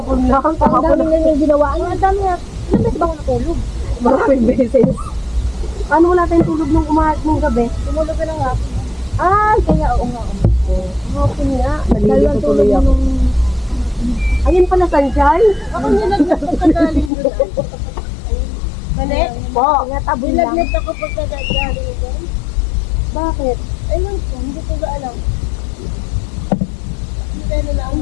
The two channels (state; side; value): drops out; right; at 17.1 s